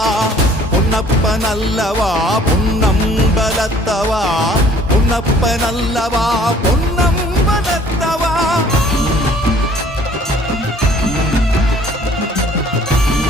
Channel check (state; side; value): normal; both; correlation 0.55